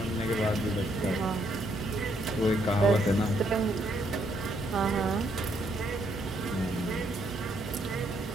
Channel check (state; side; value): noise; right; hum, 12 dB below the sound